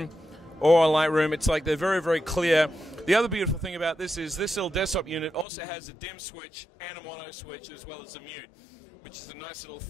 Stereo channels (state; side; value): drops out; right; at 5.5 s